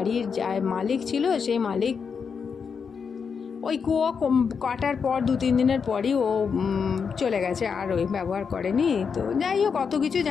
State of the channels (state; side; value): quieter; right; 6.1 dB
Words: যা মালিক ছিল, সেই মালিক ওই কুয়ো কাটার পর 2-3 দিনের পরই ও চলে গেছে, আর ওই ব্যবহার করেনি। তো যাই হোক, অত কিছু